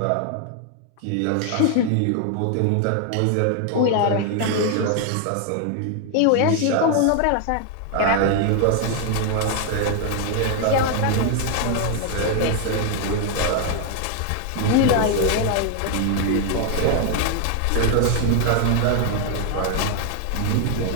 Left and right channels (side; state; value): both; different; correlation 0.00